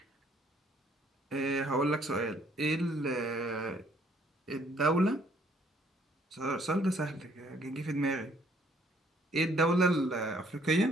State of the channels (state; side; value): normal; both; correlation 0.64